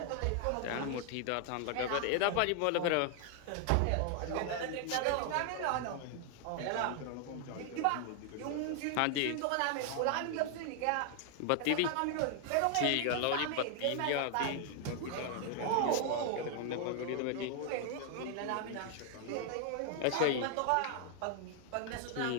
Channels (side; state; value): both; different; correlation 0.00